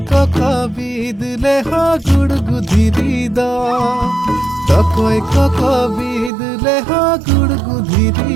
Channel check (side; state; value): left; drops out; at 6.3 s